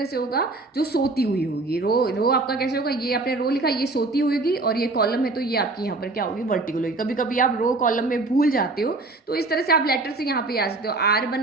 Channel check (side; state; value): left; quieter; 3.3 dB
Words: से होगा? जो सोती हुई होगी। रो आपका कैसे होगा? ये आपने रो लिखा, ये सोती हुई होगी, और ये कॉलम है तो ये आपकी यहाँ पर क्या होगी? वर्टिकल होगी। कभी कभी आप रो कॉलम में भूल जाते हो तो इस तरह से आप लेटर से यहाँ पे आ सकते हो। आर